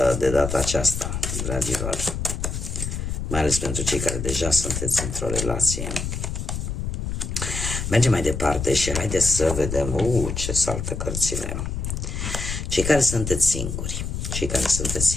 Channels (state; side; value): noise; left; rumble, 4 dB below the sound